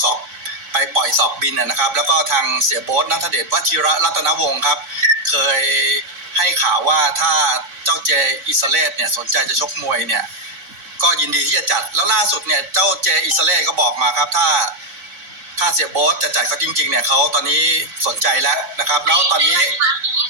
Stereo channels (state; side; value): late; left; 3.6 ms